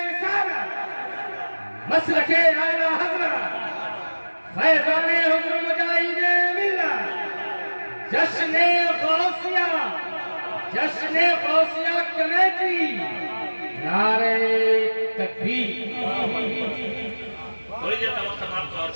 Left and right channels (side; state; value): both; inverted; correlation -1.00